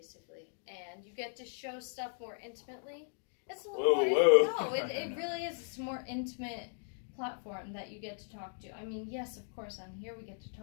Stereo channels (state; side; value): silent; right; 53 dB below the other